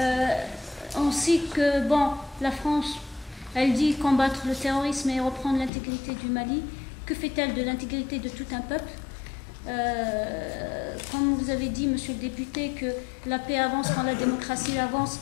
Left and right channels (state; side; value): drops out; right; at 5.7 s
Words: On sait que, bon, la France, elle dit combattre le terrorisme et reprendre l'intégrité du Mali. Que fait-elle de l'intégrité de tout un peuple? Comme vous avez dit, monsieur le député, que la paix avance quand la démocratie avance,